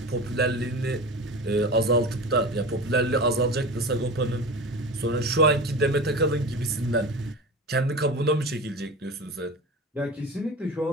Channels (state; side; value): normal; both; correlation 0.31